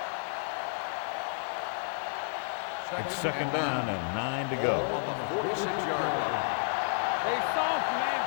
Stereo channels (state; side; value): silent; right; digital silence